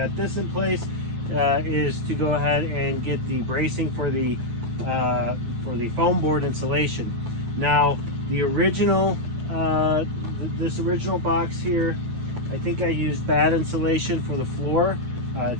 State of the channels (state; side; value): late; left; 8.8 ms